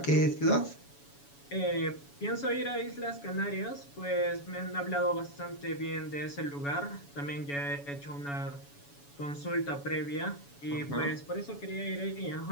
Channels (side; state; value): right; late; 7.1 ms